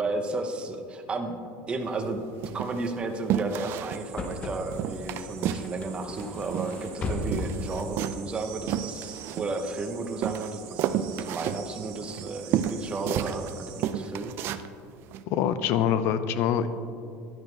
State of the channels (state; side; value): normal; both; correlation 0.40